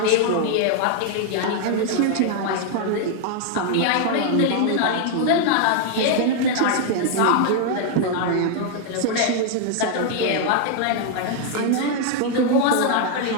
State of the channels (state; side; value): different; both; correlation 0.00